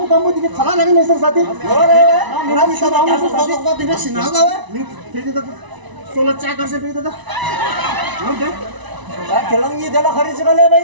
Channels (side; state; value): left; late; 1.0 ms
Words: ini kalah lagi mesra sahaja. Orang bisa bangun sesuatu kau tidak senang kau? Ni tadi tada solat cak kasih pergi tada. Nanti. Kelang ni dah hari sekali